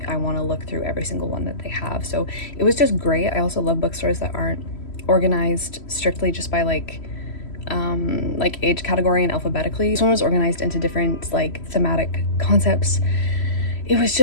I want to look through every single one that they have. So it was just great. I also love bookstores that aren't organized strictly just by like age category and alphabetically. This one was organized into different like thematic concepts. It was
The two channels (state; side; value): late; right; 3.1 ms